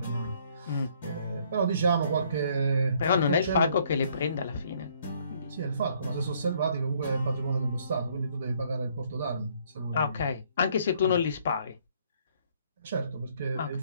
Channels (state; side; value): inverted; both; correlation -0.64